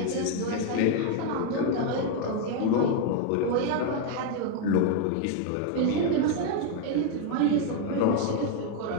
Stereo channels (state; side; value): different; both; correlation 0.01